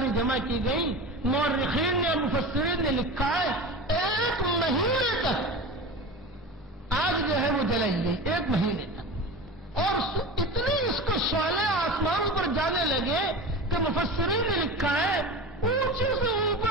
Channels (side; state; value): both; normal; correlation 0.30